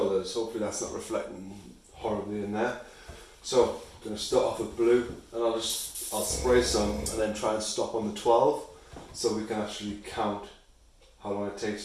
Hopefully that's not reflecting horribly in there. So I'm going to start off with blue and I'll spray some and then try and stop on the 12 so we can actually count how long it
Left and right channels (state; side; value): identical; both; correlation 1.00